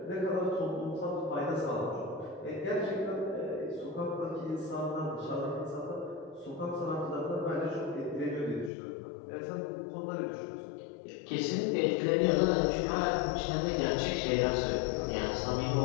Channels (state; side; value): drops out; right; at 8.7 s